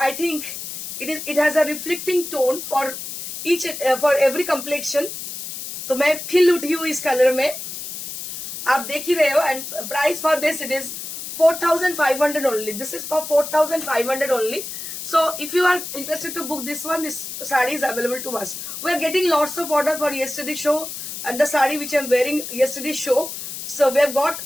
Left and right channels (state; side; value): noise; left; hiss, 8 dB below the sound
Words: I think it has a reflecting tone for for every complexion. तो मैं खिल उठी हूँ इस कलर में, आप देख ही रहे हो। And price for this it is 4,500 only. This is for 4,500 only. So if you are interested to book this one, this saree is available to us. We are getting lots of order for yesterday's show and the saree which I am wearing yesterday's show. So we have got